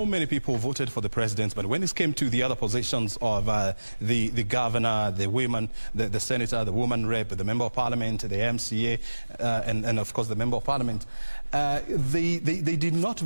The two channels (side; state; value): both; inverted; correlation -1.00